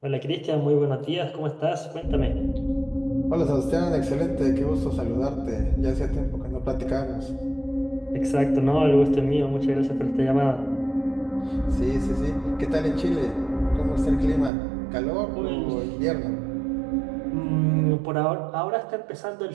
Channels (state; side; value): drops out; left; at 14.5 s